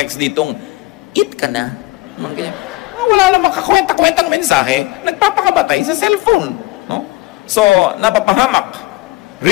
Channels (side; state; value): right; quieter; 20.6 dB